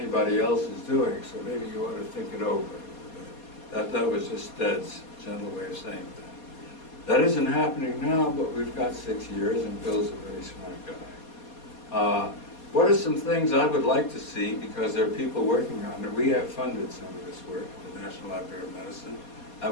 else is doing, so maybe you ought to think it over a little bit. That was just Stead's gentle way of saying that. That isn't happening now, but we've got 6 years, and Bill's a very smart guy. What are some things I would like to see, because there are people working on it? We have funded some of this work at the National Library of Medicine. I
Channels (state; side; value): late; right; 4.2 ms